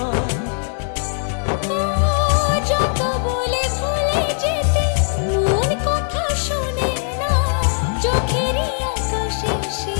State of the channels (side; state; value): right; silent; 66 dB below the other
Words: যত বলে ভুলে যেতে মন কথা শোনে না, চোখেরই আকাশে সে